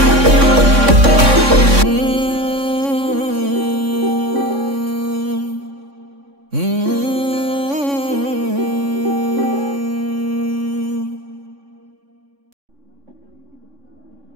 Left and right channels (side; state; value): left; late; 3.6 ms